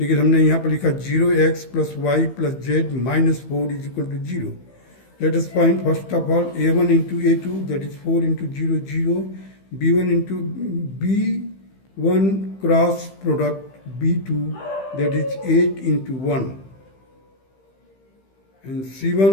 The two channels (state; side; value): late; right; 15 ms